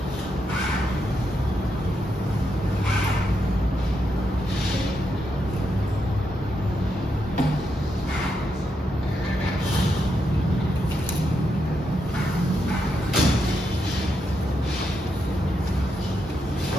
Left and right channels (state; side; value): normal; both; correlation 0.82